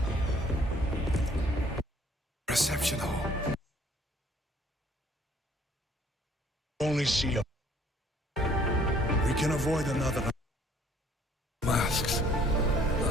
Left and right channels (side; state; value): both; normal; correlation 0.59